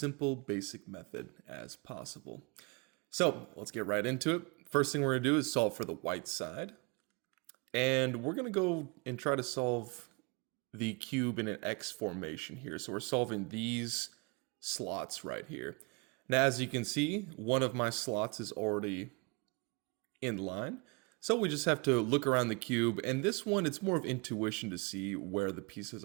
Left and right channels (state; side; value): quieter; left; 30.5 dB